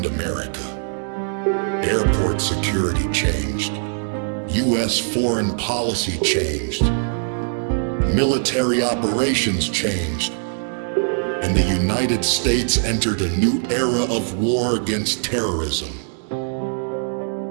America. Airport security changed. U.S. foreign policy changed. Military operations changed. And the United States entered a new era of war against terrorism.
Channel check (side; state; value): left; silent; digital silence